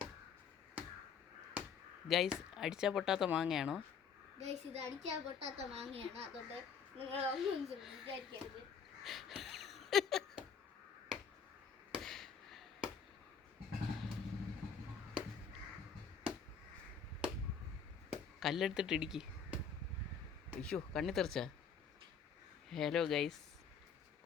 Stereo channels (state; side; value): quieter; right; 6.3 dB